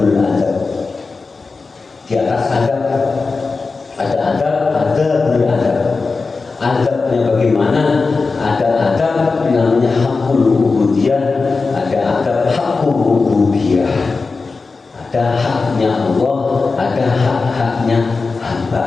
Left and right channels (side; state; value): right; quieter; 4.2 dB